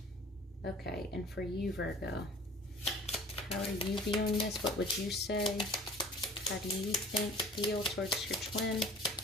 Okay, and for you, Virgo, how are you viewing this? What would you say? How do you think, feel towards your twin?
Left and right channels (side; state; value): both; normal; correlation 0.46